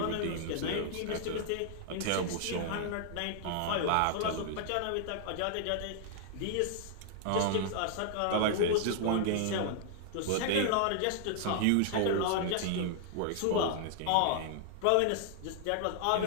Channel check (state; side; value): different; both; correlation -0.01